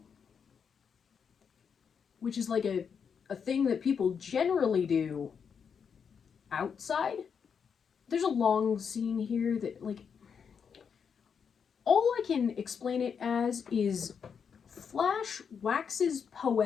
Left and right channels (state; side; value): quieter; right; 6.7 dB